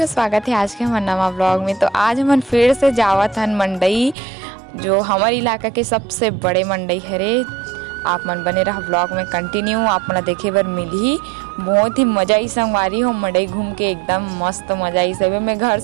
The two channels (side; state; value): left; drops out; at 4.2 s